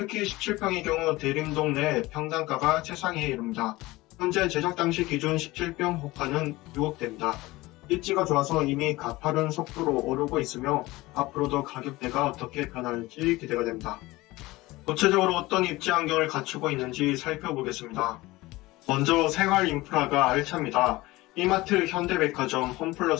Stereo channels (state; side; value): quieter; right; 19.9 dB